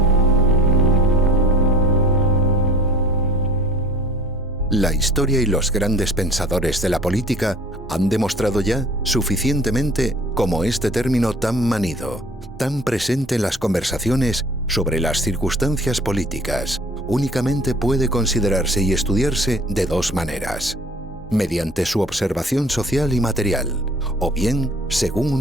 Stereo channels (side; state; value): both; normal; correlation 0.48